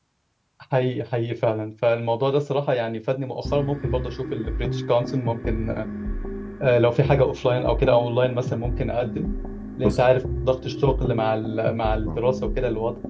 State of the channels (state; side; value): identical; both; correlation 1.00